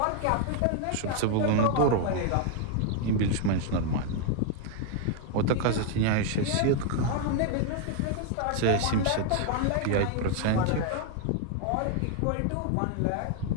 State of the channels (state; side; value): different; both; correlation 0.00